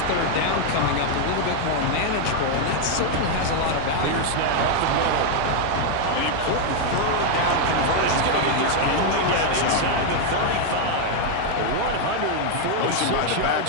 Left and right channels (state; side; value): different; both; correlation 0.01